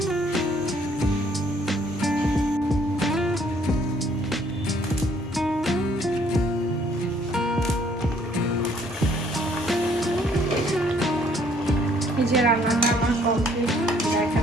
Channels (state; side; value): normal; both; correlation 0.63